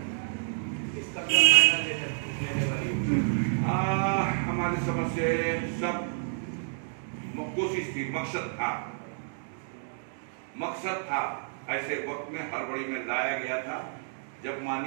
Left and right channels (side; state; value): left; silent; digital silence